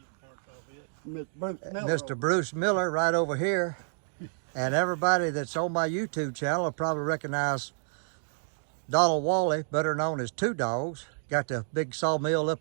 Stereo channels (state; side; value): silent; left; digital silence